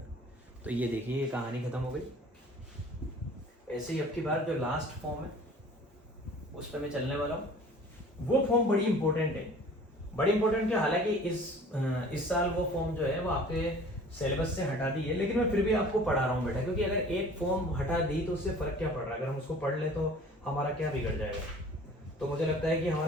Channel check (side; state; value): both; normal; correlation 0.47